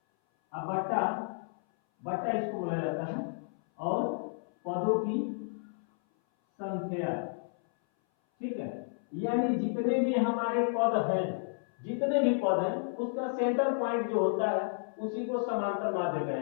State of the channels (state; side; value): silent; right; 57 dB below the other